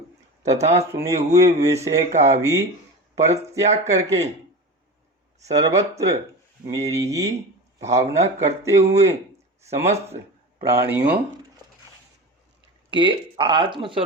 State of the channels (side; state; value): both; normal; correlation 0.29